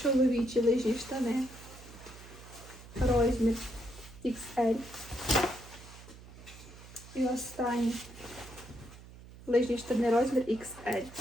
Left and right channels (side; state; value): right; noise; hum, 18 dB below the sound